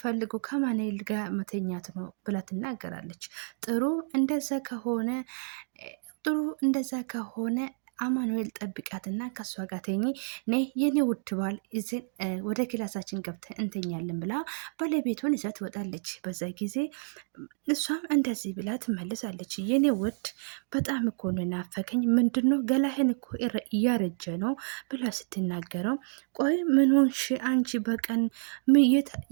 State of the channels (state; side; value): silent; left; digital silence